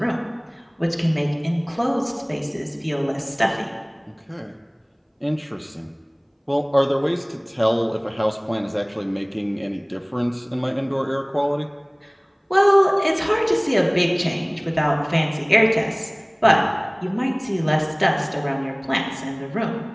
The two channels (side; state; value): both; identical; correlation 1.00